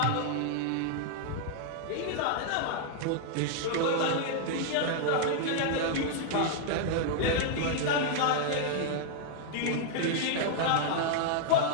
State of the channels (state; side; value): different; both; correlation -0.01